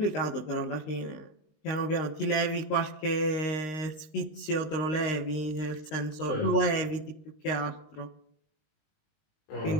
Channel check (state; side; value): late; right; 19 ms